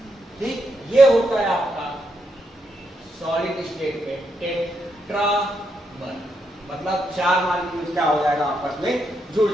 ठीक, ये होता है आपका सॉलिड स्टेट में टेट्रामर, मतलब 4 मॉलिक्यूल्स क्या हो जाएगा आपस में जुड़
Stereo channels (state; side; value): normal; both; correlation 0.80